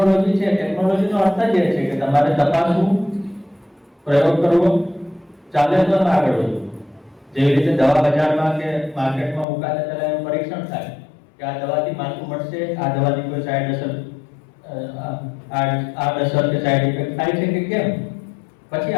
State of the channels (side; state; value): right; drops out; at 9.5 s